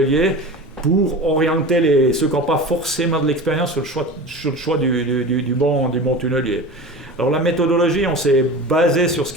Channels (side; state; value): both; normal; correlation 0.32